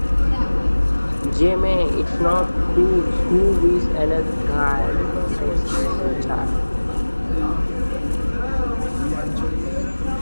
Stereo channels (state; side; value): inverted; both; correlation -1.00